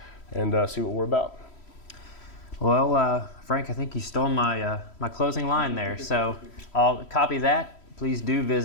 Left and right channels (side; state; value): right; late; 3.1 ms